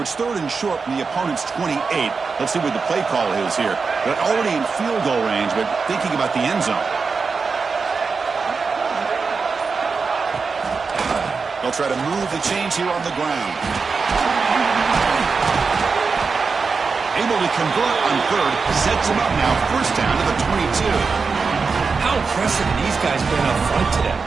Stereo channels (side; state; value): left; quieter; 4.8 dB